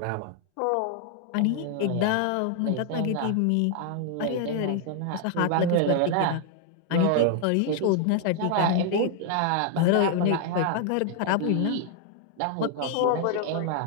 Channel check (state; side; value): different; both; correlation 0.00